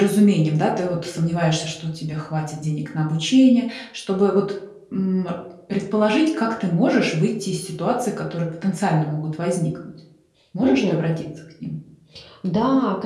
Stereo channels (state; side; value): identical; both; correlation 1.00